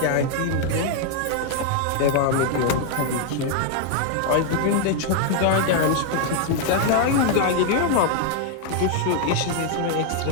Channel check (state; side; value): different; both; correlation 0.00